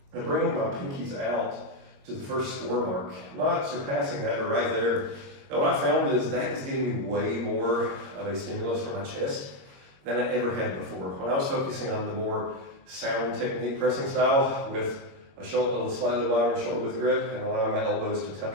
I'm bringing my pinkies out to the first score mark, not surpassing that, but right there. And what I found is that is getting me way more of a stimulus for my chest than I ever had before. When I was focusing on the more sound technique pressing style with a slightly wider shoulder width grip and allowing my elbows to tuck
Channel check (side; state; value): left; late; 22 ms